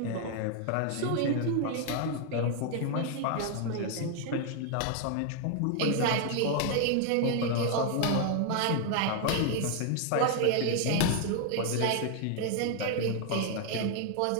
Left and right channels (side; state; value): both; different; correlation 0.00